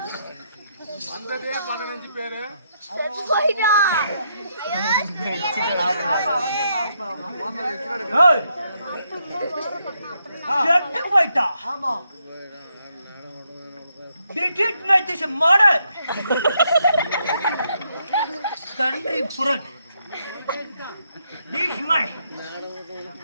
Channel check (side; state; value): both; inverted; correlation -0.77